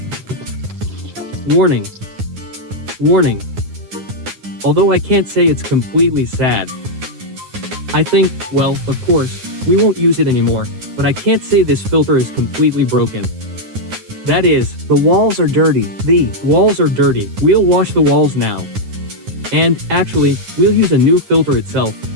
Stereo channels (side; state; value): left; late; 9.7 ms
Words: Warning. Warning. Although I can't say it's completely sad. I think, well, of course, we won't use it anymore, but I can't say this filter is completely broken. That is, the walls are dirty. The walls are dirty. We'll wash the walls now. And, actually, we'll use a new filter itself,